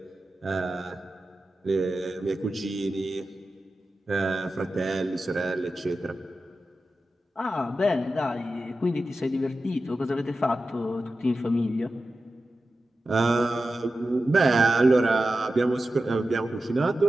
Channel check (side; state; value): both; normal; correlation 0.92